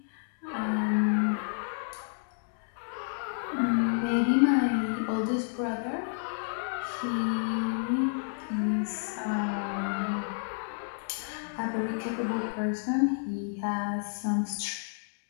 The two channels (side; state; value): right; silent; digital silence